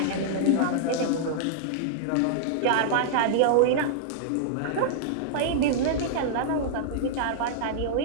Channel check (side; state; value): both; different; correlation -0.01